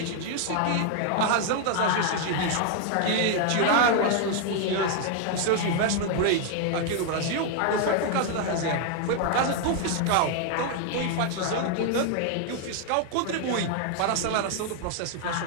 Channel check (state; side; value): different; both; correlation 0.00